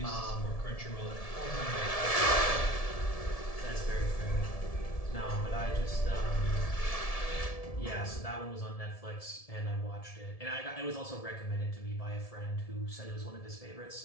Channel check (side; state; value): right; late; 1.7 ms